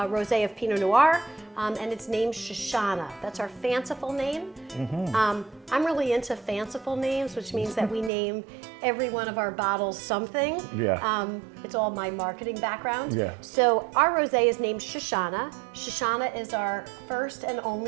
of Pinot Noir, and it's named Shoshana. That's our fanciful name. I'm really into fanciful names, which means that we name every one of our bottles something. Yeah. It's all my marketing background. Yeah. So our rosé is named Shoshana. Shoshana is our first and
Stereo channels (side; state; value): left; drops out; at 8.1 s